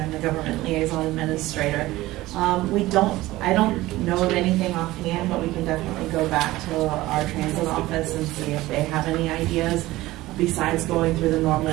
I'm the Government Liaison Administrator. I don't know of anything offhand, but we can definitely go back to our transit office and see if they have any ideas besides going through the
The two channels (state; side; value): quieter; left; 17.7 dB